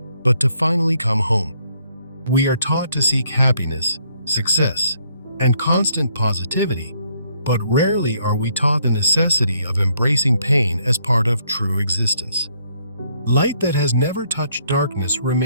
but to finally come home. We are taught to seek happiness, success, and constant positivity, but rarely are we taught the necessity of embracing pain as part of true existence. Light that has never touched darkness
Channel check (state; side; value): inverted; both; correlation -0.69